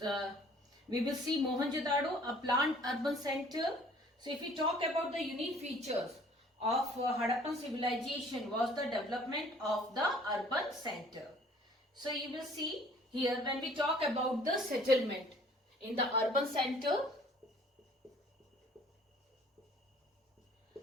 see Mohenjo-daro, a planned urban center. So if we talk about the unique features of Harappan civilization was the development of the urban center. So you will see here when we talk about the settlement in the urban center.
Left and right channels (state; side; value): normal; both; correlation 0.54